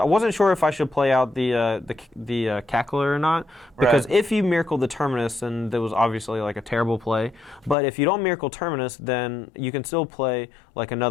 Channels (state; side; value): drops out; right; at 7.8 s